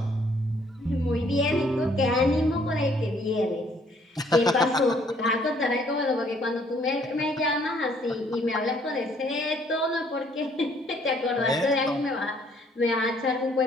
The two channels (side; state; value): both; normal; correlation 0.64